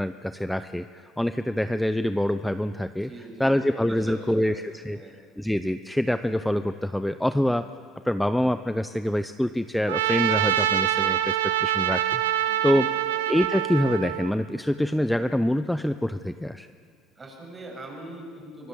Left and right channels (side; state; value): both; normal; correlation 0.69